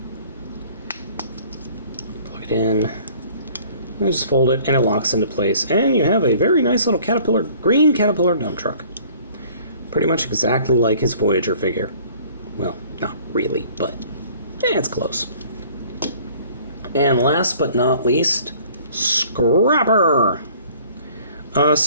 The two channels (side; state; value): both; inverted; correlation -0.53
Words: plug it in, and just fold it, and it locks into place. And you have a very nice little green Caterpillar dump truck. Pretty much exactly like his Voyager figure. Well, not really, but it's close. And last but not least, Scrapper!